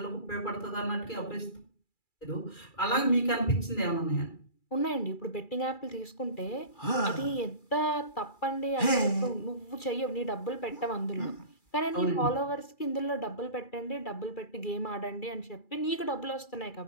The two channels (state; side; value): late; right; 2.3 ms